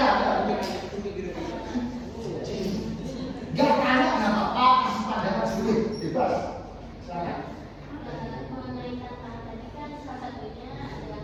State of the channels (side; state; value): both; identical; correlation 1.00